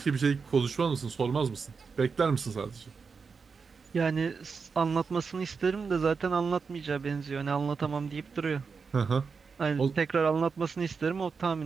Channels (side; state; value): left; quieter; 5.3 dB